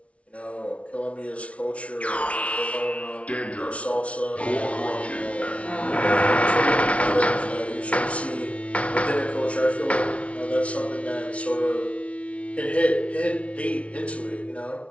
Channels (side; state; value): right; late; 0.063 ms